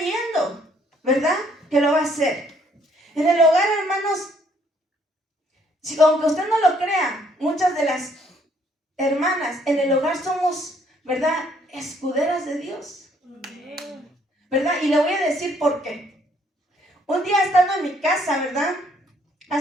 ¿verdad? Que lo va a hacer. En el hogar, hermanos, aunque usted no lo crea, muchas de las hermanas en el hogar somos, ¿verdad?, escuderas de Dios, ¿verdad? Y le voy a decir por qué. Un día estando en mi casa, ¿verdad?,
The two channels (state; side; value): normal; both; correlation 0.66